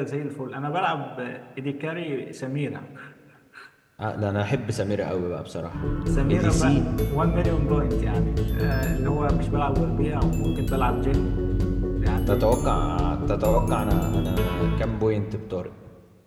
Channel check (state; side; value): identical; both; correlation 1.00